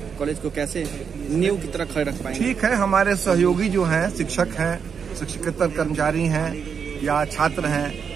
कॉलेज को कैसे नींव की तरह खड़े रख पाएंगे? ठीक है, हमारे सहयोगी जो हैं, शिक्षक हैं, शिक्षकेतर कर्मचारी हैं या छात्र हैं,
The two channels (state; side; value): quieter; left; 6.7 dB